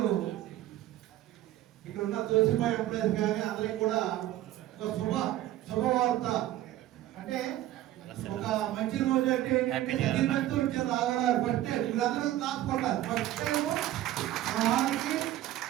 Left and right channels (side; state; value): left; quieter; 14.0 dB